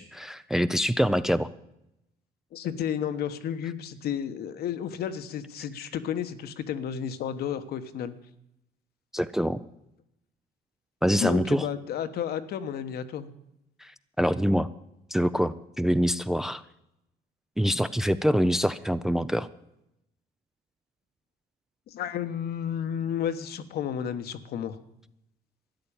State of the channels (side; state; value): both; normal; correlation 0.80